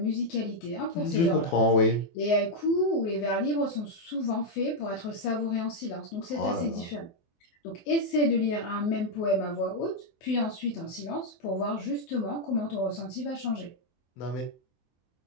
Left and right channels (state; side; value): late; right; 24 ms